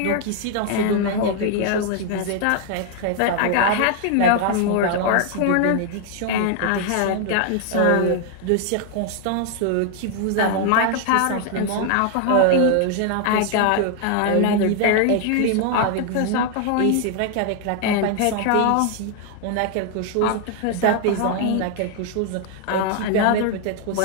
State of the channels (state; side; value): different; both; correlation 0.00